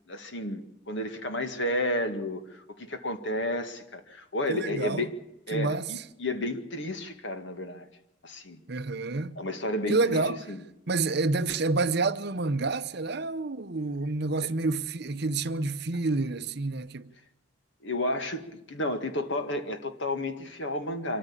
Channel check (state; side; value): normal; both; correlation 0.09